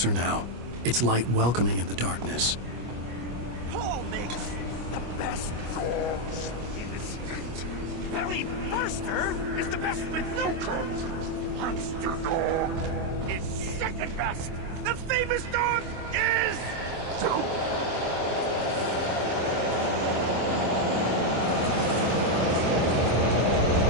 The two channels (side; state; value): left; late; 25 ms